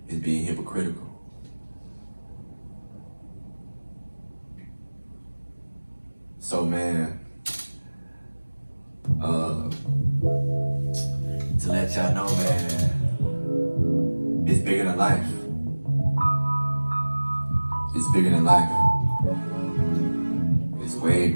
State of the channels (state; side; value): inverted; both; correlation -1.00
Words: is being hypocritical. So man, to let y'all know, man, it's bigger than life. It's bigger than life. It's way